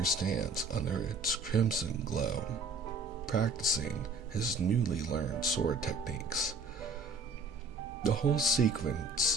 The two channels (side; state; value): left; quieter; 3.5 dB